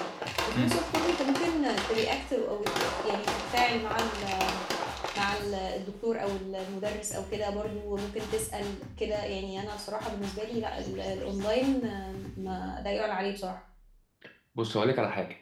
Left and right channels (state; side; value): identical; both; correlation 1.00